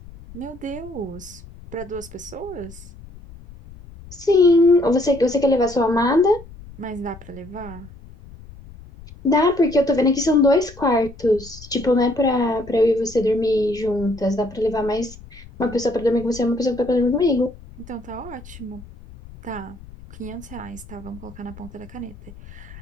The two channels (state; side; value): noise; left; rumble, 18 dB below the sound